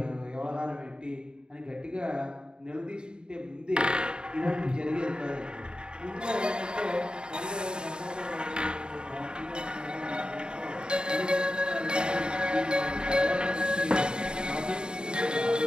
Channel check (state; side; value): late; left; 0.049 ms